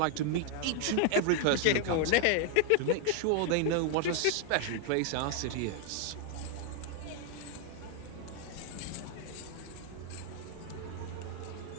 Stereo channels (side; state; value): both; different; correlation 0.00